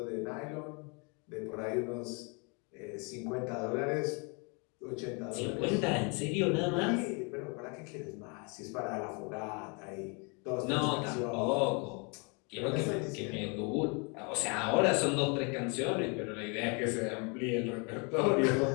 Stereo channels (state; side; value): quieter; right; 33.4 dB